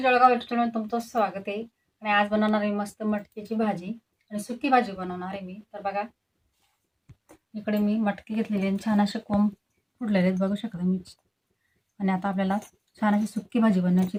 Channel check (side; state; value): both; identical; correlation 1.00